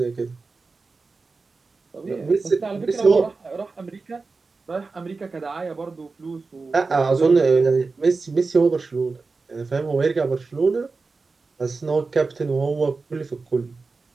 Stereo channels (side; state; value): left; quieter; 4.1 dB